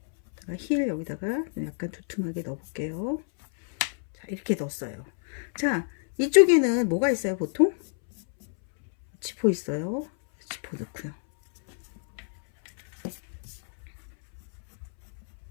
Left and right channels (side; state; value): right; silent; 60 dB below the other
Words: 힐 여기다가 약간 두툼하게 넣어볼게요. 자, 이렇게 넣었어요. 자, 이쪽에는 뭐가 있어요? 보통 지퍼 있어요. 지퍼 넣고요.